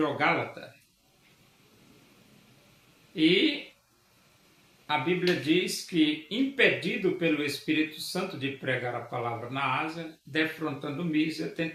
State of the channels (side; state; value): both; identical; correlation 1.00